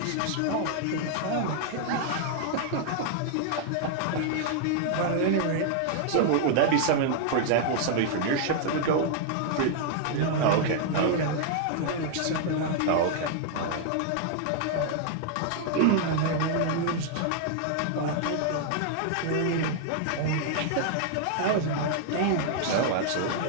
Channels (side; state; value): both; different; correlation 0.00